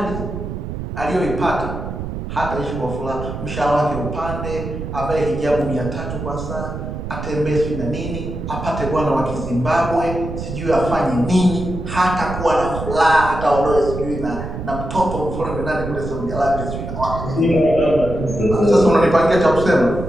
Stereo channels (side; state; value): right; noise; rumble, 7 dB below the sound